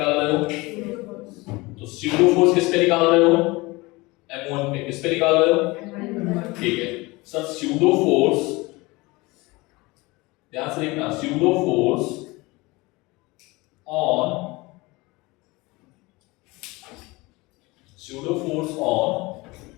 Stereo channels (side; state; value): right; quieter; 23.0 dB